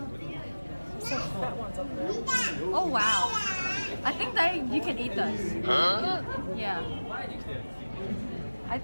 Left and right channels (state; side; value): inverted; both; correlation -1.00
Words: So that one's up there. Oh wow! I think that you can eat those. Huh? Yeah. I